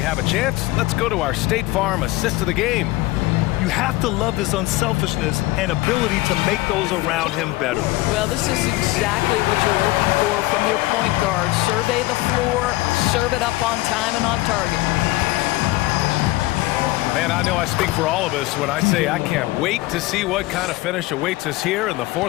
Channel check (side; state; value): right; quieter; 19.0 dB